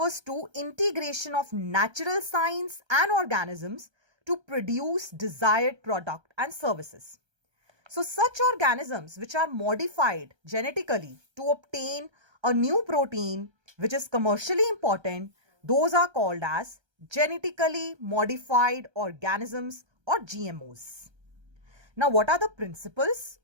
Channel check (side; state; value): left; late; 1.3 ms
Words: to integration of natural science and organisms to produce desired product and services. So such organisms which are modified genetically to obtain a new protein which is commercially important, those are called as genetically modified organisms or GMOs. Now what are the principles